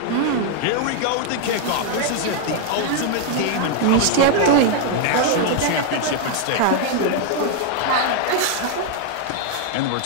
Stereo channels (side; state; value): both; different; correlation 0.00